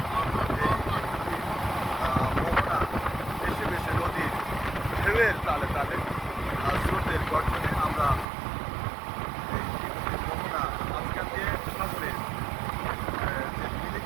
মোহনা বেশি বেশি নদীর ঢেউয়ের তালে তালে স্রোতের গর্জনে আমরা এই মোহনা মাঝখান দিয়ে সাগরের যে মিলে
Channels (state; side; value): drops out; left; at 8.2 s